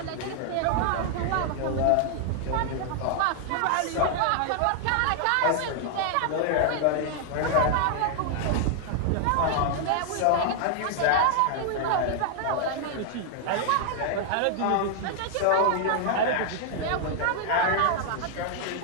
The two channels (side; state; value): both; different; correlation 0.00